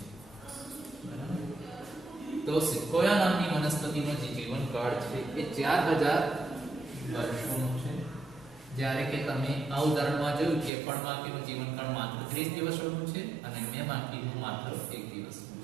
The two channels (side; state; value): left; drops out; at 10.7 s